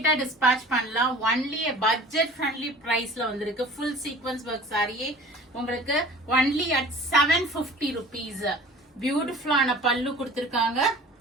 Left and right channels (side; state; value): both; normal; correlation 0.44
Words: டிஸ்பேச் பண்ணலாம். ஒன்லி பட்ஜெட் ஃப்ரெண்ட்லி பிரைஸ்ல வந்திருக்கு. ஃபுல் சீக்வென்ஸ் ஒர்க் சாரியே உங்களுக்கு ஒன்லி அட் 750 rupees. பியூட்டிஃபுல்லான பல்லு கொடுத்திருக்காங்க.